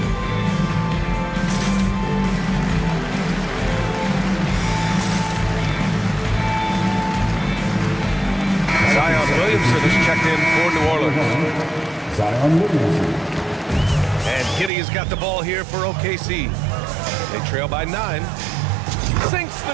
Williamson is checked in for New Orleans. Zion Williamson. And Giddey has got the ball here for OKC. They trail by 9. Sinks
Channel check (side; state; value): left; drops out; at 14.7 s